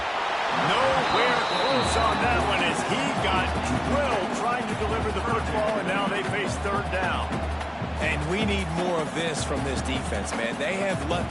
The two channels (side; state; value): both; identical; correlation 1.00